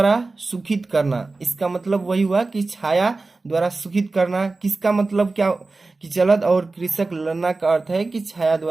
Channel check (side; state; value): left; quieter; 3.6 dB